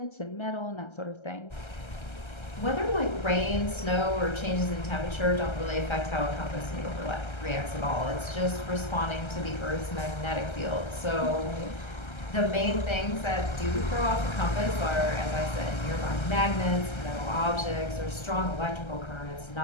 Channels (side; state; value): right; late; 1.3 ms